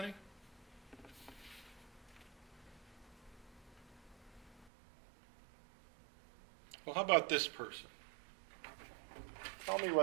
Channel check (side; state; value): left; drops out; at 4.7 s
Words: Well, how about this person? Tell me